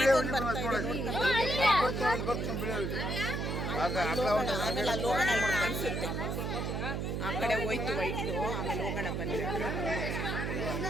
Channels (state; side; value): noise; right; hum, 1 dB below the sound